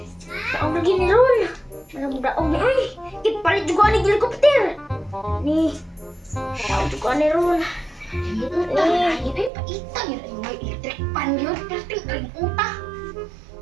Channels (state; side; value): drops out; left; at 9.5 s